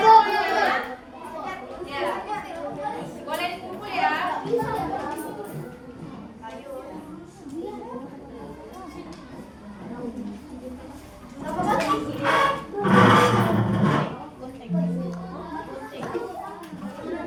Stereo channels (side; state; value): both; identical; correlation 1.00